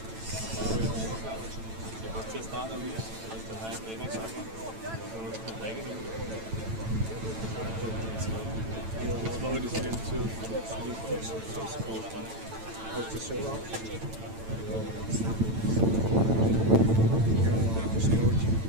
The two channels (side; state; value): left; late; 9.0 ms